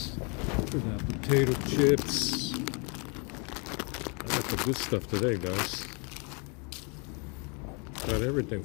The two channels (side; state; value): right; quieter; 33.7 dB